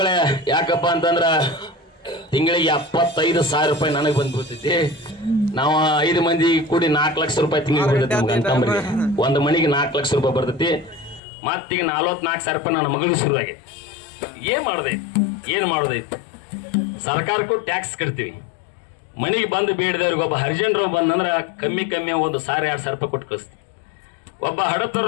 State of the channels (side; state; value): right; drops out; at 11.2 s